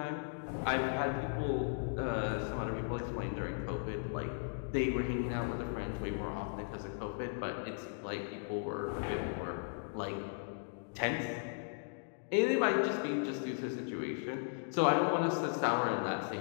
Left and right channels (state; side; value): silent; right; digital silence